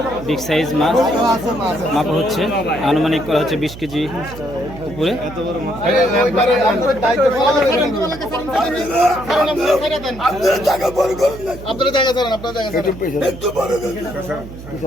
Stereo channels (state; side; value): noise; right; hum, 14 dB below the sound